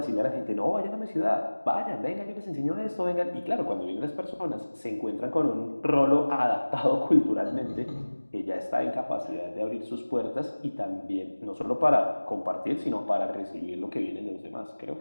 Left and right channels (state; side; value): inverted; both; correlation -1.00